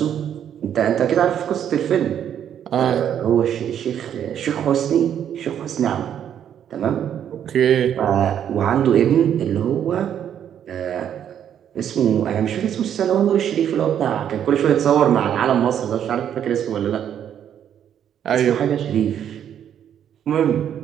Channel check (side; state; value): left; quieter; 9.4 dB